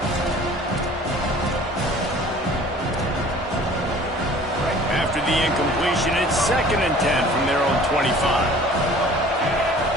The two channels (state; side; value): normal; both; correlation 0.48